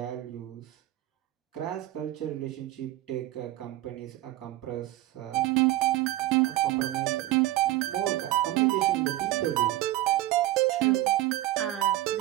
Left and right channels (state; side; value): quieter; left; 16.3 dB